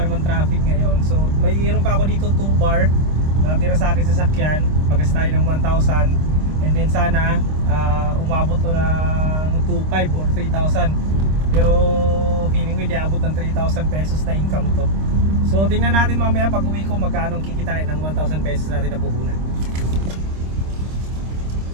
naman traffic ngayon. So mayroon pa ako dito 2 bar natira sa akin sa sakyan. Pagas tayo ng 1,000. And then sana umabot to ng 2,500 or 3,000. Pero feeling ko hindi abot ng 3,000 pesos na income to. So tingnan natin mamaya pag uwi ko magkano kikitain ng 1,000 pesos natin na puhunan.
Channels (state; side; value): late; left; 26 ms